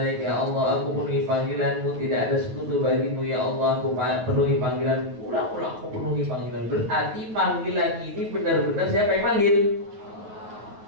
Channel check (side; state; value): left; late; 9.6 ms